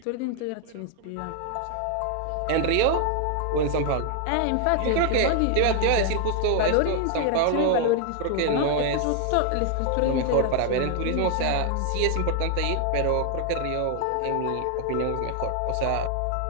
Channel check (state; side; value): different; both; correlation 0.00